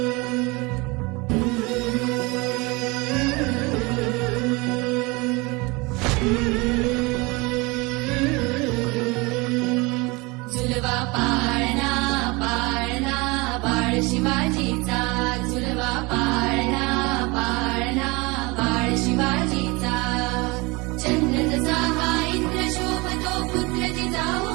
झुलवा पाळणा पाळणा बाळ शिवाजीचा झुलवा पाळणा पाळणा बाळ शिवाजीचा चंद्र जसा हा इंद्र शोभतो पुत्र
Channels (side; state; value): left; quieter; 25.6 dB